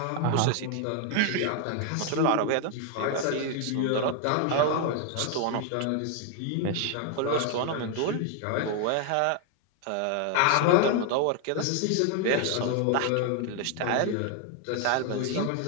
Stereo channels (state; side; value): different; both; correlation 0.00